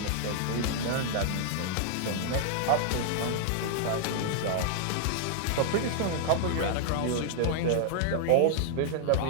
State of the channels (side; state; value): both; different; correlation -0.01